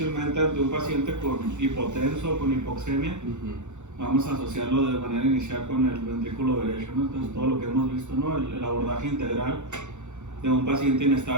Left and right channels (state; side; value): late; left; 0.84 ms